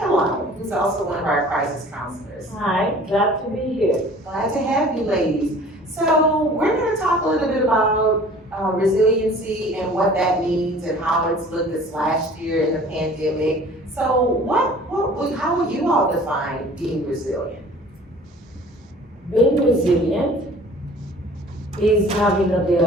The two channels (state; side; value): normal; both; correlation 0.48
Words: who's also one of our crisis counselors. Hi, glad to be here. Glad to have you ladies. So we're going to talk a little bit about resiliency and what that means and how it's looked this last year in the pandemic. So how would you all define being resilient? Being resilient is having